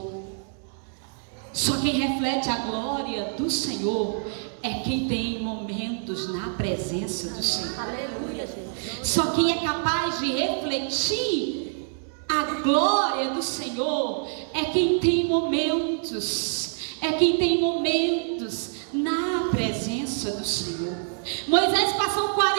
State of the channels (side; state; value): left; silent; 61 dB below the other